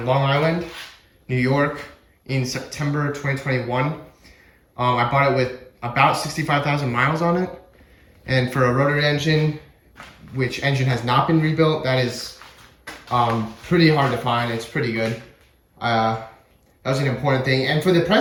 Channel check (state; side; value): identical; both; correlation 1.00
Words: Long Island, New York in September 2021. I bought it with about 65,000 miles on it. And for a rotary engine, which engine has not been rebuilt, that is pretty hard to find. It's pretty good. That was an important thing. And for the